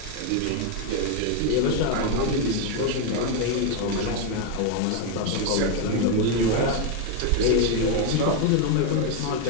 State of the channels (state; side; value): different; both; correlation 0.01